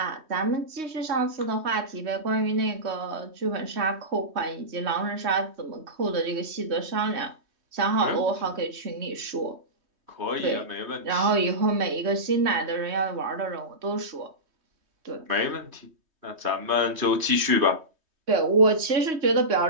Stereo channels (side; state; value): left; late; 3.2 ms